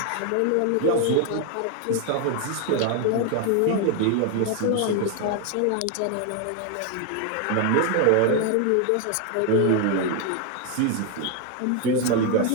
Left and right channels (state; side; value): different; both; correlation 0.01